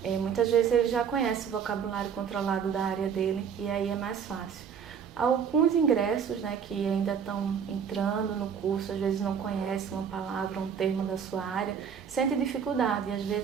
muitas vezes ele já conhece o vocabulário controlado da área dele e aí é mais fácil. Alguns ingressos, né, que ainda estão entrando no curso, às vezes não conhecem uma palavra, um termo da sua área, sente dificuldade e às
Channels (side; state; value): left; quieter; 7.3 dB